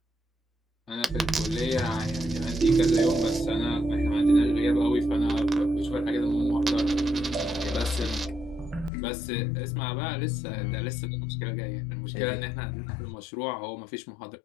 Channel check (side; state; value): right; drops out; at 8.9 s